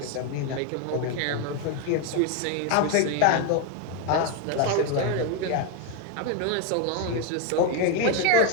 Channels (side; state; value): both; different; correlation 0.01